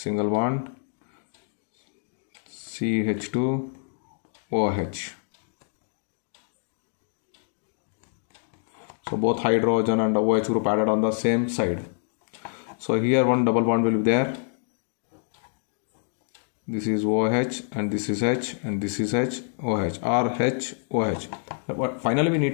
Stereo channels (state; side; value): silent; right; digital silence